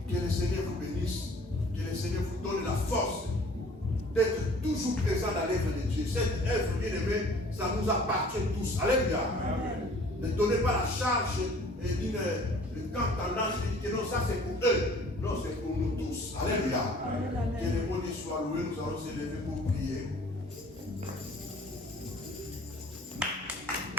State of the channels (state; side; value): normal; both; correlation 0.51